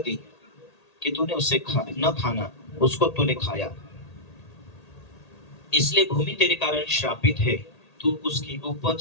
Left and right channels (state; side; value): late; right; 1.8 ms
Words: कि तूने उसे न खाना, उसको तूने खाया, इसलिए भूमि तेरे कारण श्रापित है। तू उसकी